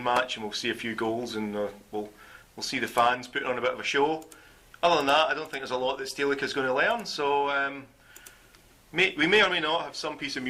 match, and we'll see a few goals, and we'll see the fans putting on a bit of a show. Other than that, I don't think there's a lot that Stelica's going to learn. So we may or may not have some piece of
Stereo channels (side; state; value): both; identical; correlation 1.00